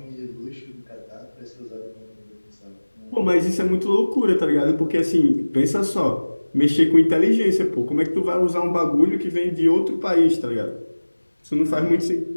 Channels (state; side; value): inverted; both; correlation -1.00